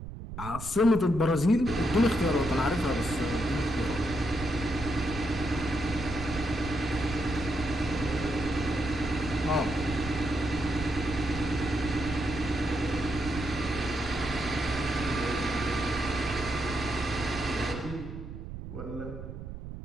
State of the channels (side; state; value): right; noise; rumble, 9 dB below the sound